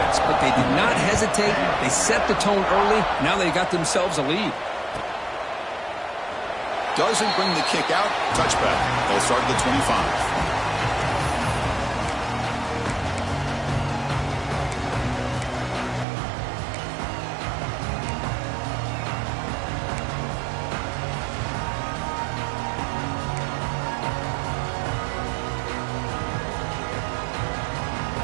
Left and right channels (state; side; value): drops out; left; at 16.1 s